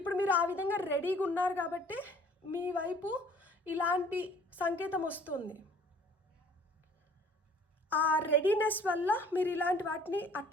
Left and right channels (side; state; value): both; normal; correlation 0.54